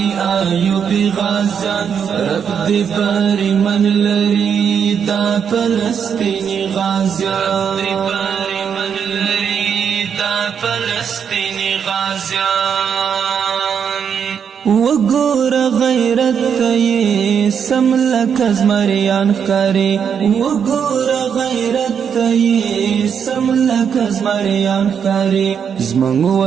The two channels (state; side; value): quieter; left; 7.4 dB